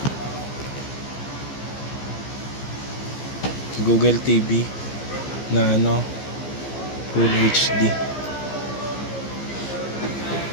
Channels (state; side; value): late; right; 15 ms